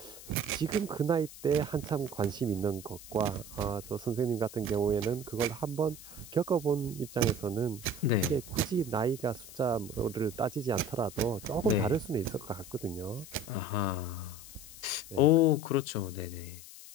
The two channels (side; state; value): left; noise; hiss, 15 dB below the sound